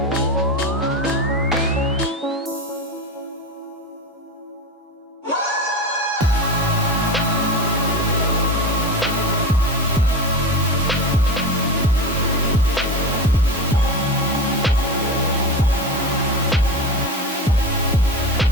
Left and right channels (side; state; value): both; normal; correlation 0.24